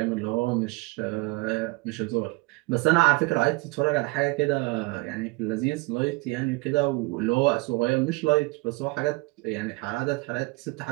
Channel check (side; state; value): left; quieter; 25.3 dB